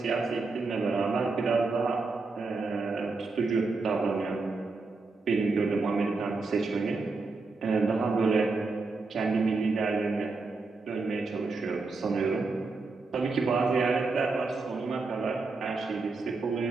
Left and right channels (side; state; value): left; quieter; 3.9 dB